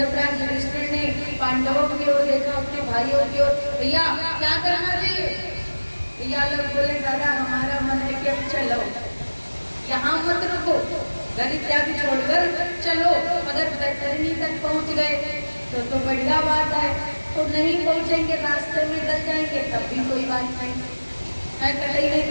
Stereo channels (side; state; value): both; inverted; correlation -1.00